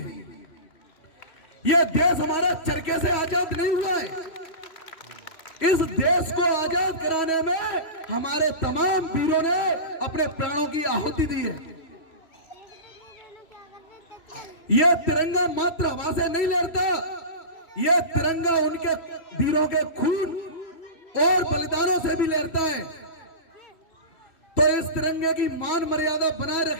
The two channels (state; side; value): late; right; 3.1 ms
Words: यह देश हमारा चरखे से आजाद नहीं हुआ है। इस देश को आजाद कराने में हमारे तमाम वीरों ने अपने प्राणों की आहुति दी है। यह तिरंगा मात्र हवा से नहीं लहरता, यह तिरंगा उनके वीरों के खून और बलिदानों से भी लहरता है। तो इस तिरंगे की मान मर्यादा बनाए